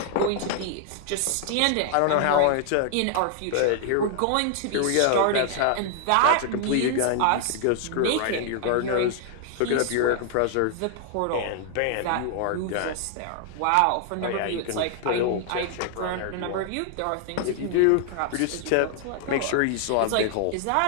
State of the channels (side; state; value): both; different; correlation 0.00